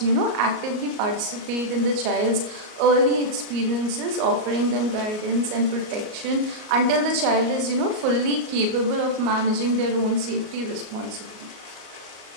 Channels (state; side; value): late; left; 38 ms